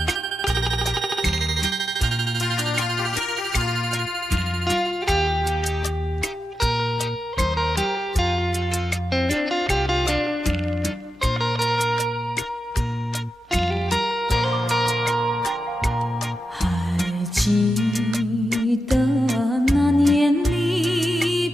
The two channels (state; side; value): normal; both; correlation 0.89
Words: 记得那年离